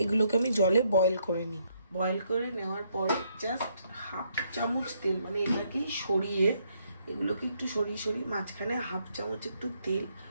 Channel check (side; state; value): both; inverted; correlation -0.72